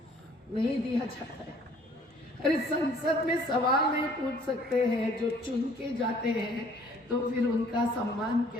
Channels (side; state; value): both; normal; correlation 0.57